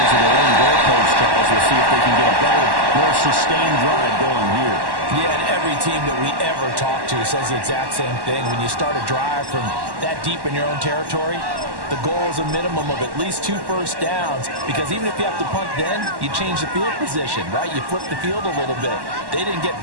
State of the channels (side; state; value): left; late; 1.1 ms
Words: of their own goalpost, Charles. We'll see if they can get a better, more sustained drive going here. Yeah, and every team that we ever talk to says the exact same thing. When you start a drive from that deep in your own territory, the goal is a minimum of at least 2 first downs, because even if you have to punt then, you change the field position, right? You flip the field a little bit. They didn't get